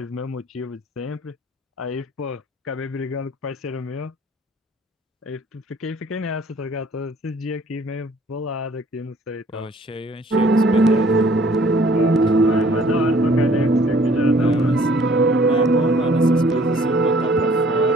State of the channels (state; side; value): normal; both; correlation 0.57